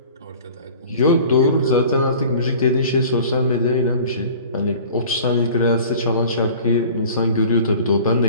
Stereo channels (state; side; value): inverted; both; correlation -0.45